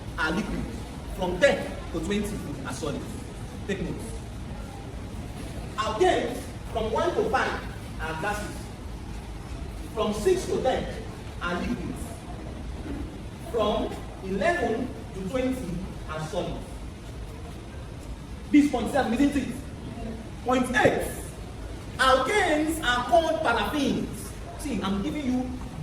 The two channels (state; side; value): identical; both; correlation 1.00